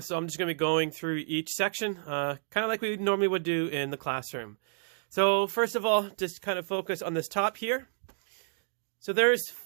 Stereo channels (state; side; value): silent; left; digital silence